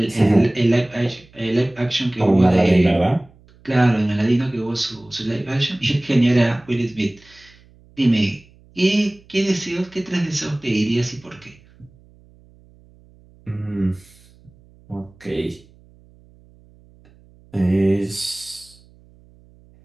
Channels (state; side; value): noise; right; hum, 28 dB below the sound